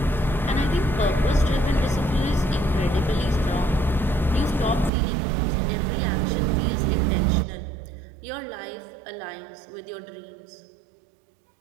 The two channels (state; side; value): drops out; left; at 4.9 s